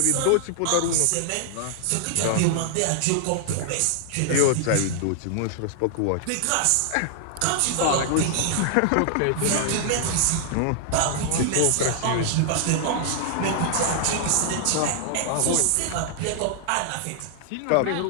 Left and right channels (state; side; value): different; both; correlation -0.01